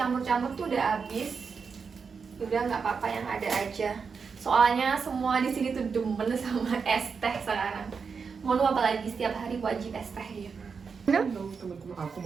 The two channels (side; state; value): left; quieter; 5.6 dB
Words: tuh udah habis. Udah nggak apa-apa yang ada aja. Soalnya semua di sini tuh demen sama es teh sekarang. Mau apalagi setiap hari wajib es teh ya. Halo teman-teman, aku